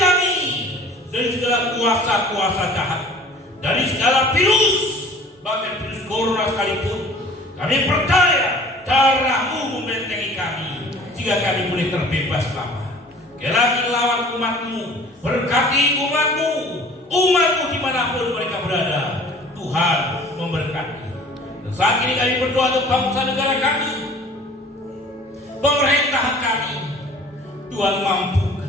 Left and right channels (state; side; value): normal; both; correlation 0.48